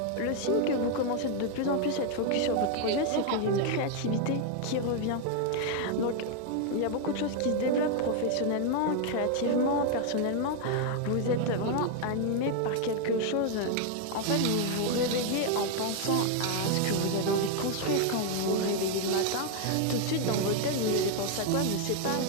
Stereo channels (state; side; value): different; both; correlation 0.00